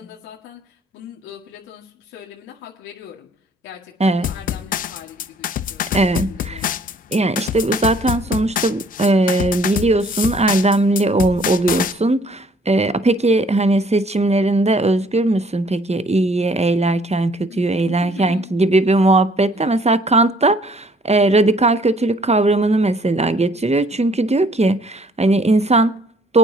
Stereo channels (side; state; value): both; normal; correlation 0.60